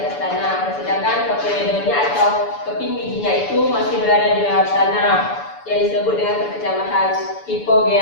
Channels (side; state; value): right; late; 6.9 ms